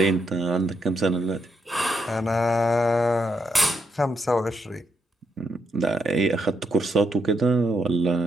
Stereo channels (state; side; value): normal; both; correlation 0.80